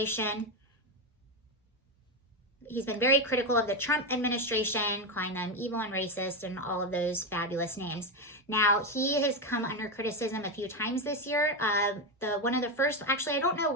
He's been very critical of the Trump administration, calling them evil and racist and all of those fabulous names. Now, he has come under criticism a few times this year. One of the first, actually, I don't know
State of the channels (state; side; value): normal; both; correlation 0.11